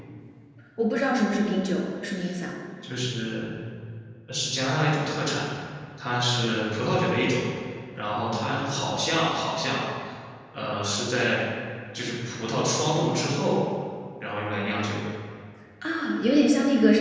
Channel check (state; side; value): identical; both; correlation 1.00